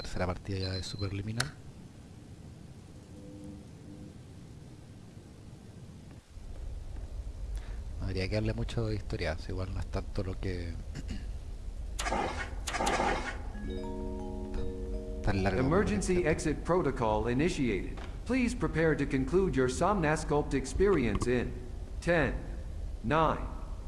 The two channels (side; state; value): both; identical; correlation 1.00